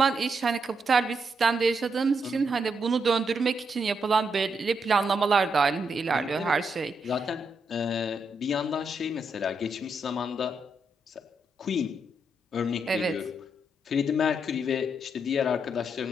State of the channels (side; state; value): both; normal; correlation 0.80